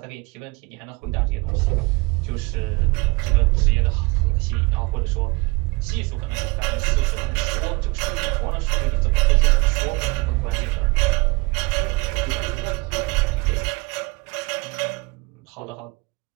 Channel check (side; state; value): left; quieter; 25.7 dB